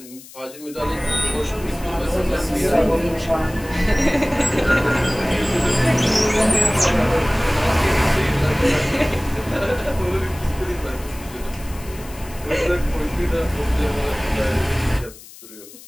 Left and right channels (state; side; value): noise; left; hiss, 19 dB below the sound